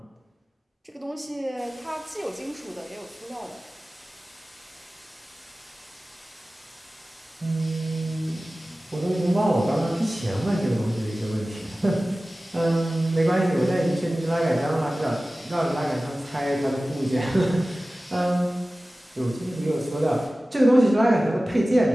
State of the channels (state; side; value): normal; both; correlation 0.96